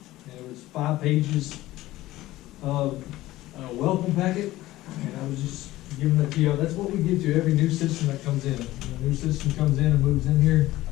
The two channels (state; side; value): quieter; right; 16.7 dB